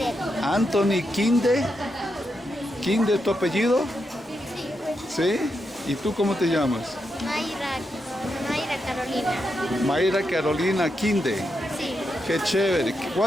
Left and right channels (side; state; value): both; normal; correlation 0.84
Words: Anthony Kinde. ¿Kinde tu apellido? ¿Sí? ¿Y tú cómo te llamas? Mayra Carolina. Mayra Carolina Kinde. Sí. Qué chévere.